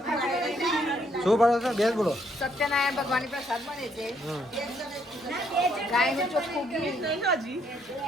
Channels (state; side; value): normal; both; correlation 0.70